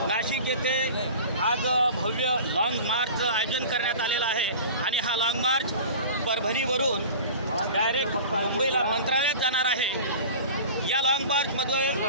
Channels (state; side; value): inverted; both; correlation -0.38